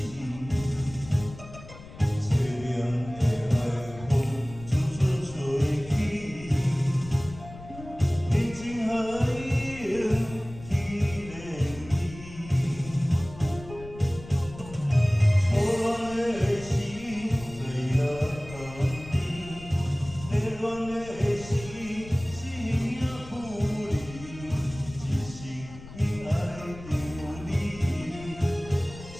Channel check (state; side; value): noise; left; rumble, 15 dB below the sound